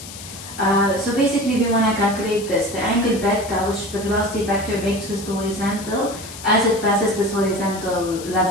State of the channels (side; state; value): left; noise; hiss, 13 dB below the sound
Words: So basically we want to calculate this, the angle beta which the velocity vector makes with the horizontal as it passes this horizontal